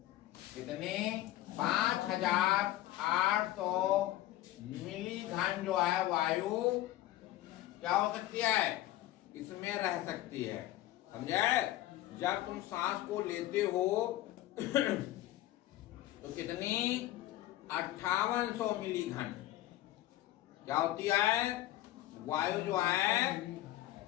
कितने? 5800 मिली घन जो है वायु क्या हो सकती है? इसमें रह सकती है। समझे? जब तुम सांस को लेते हो तो कितनी? 5800 मिली घन क्या होती है? वायु जो है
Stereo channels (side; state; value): right; quieter; 15.3 dB